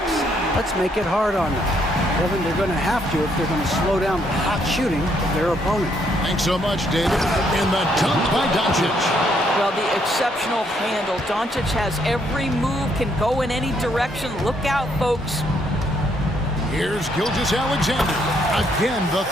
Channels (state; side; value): normal; both; correlation 0.71